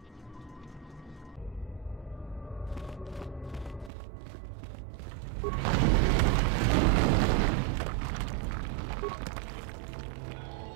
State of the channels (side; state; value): left; drops out; at 3.9 s